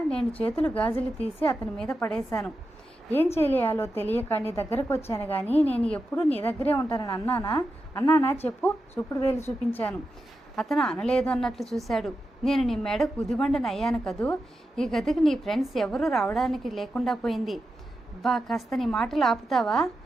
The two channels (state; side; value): normal; both; correlation 0.89